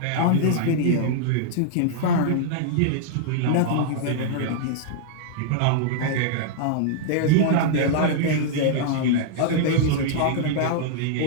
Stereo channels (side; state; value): both; different; correlation -0.01